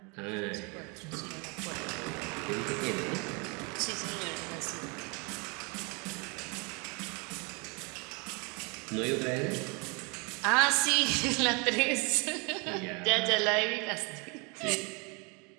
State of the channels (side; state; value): left; quieter; 31.3 dB